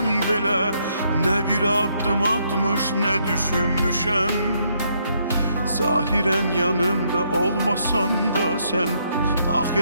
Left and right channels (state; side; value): inverted; both; correlation -0.73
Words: belə nə bir addım atmış, nə düşünmüşəm. Zahirən yanımda olmasan da sən,